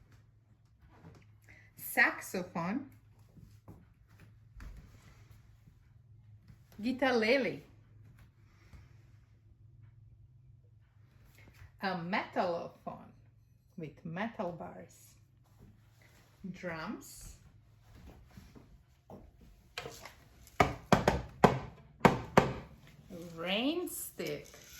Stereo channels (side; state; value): both; identical; correlation 1.00